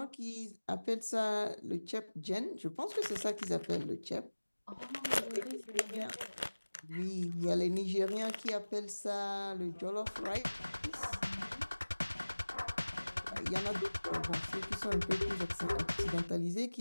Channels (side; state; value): both; inverted; correlation -1.00